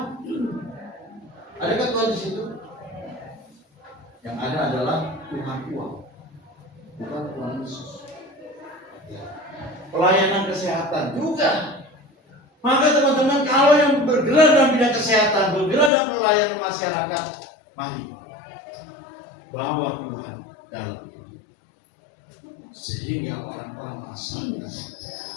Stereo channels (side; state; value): right; drops out; at 15.9 s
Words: Adakah Tuhan di situ? Yang ada adalah Tuhan uang, bukan Tuhan Yesus. Ya. Pelayanan kesehatan juga. Maka teman-teman, kalau yang bergerak dalam bidang kesehatan, bergerak dalam pelayanan masyarakat, mari bawa Tuhan dalam hidup, sehingga orang-orang